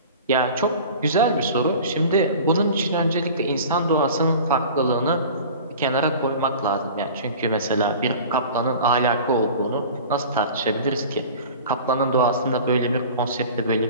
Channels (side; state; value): both; inverted; correlation -0.40